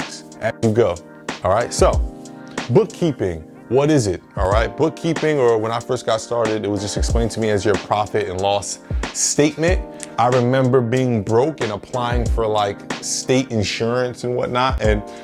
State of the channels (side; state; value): both; identical; correlation 1.00